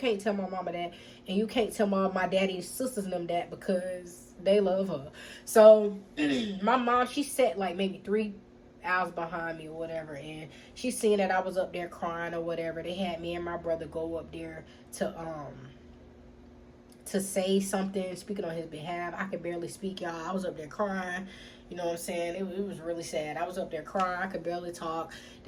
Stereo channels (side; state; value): both; identical; correlation 1.00